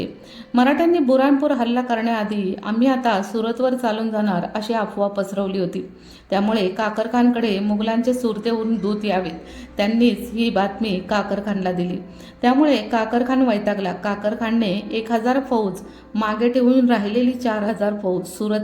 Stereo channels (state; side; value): identical; both; correlation 1.00